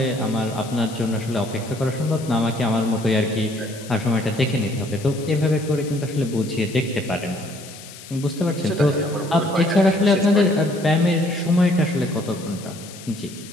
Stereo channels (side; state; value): left; noise; hiss, 17 dB below the sound